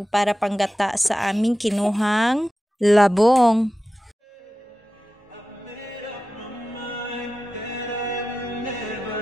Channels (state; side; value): normal; both; correlation 0.94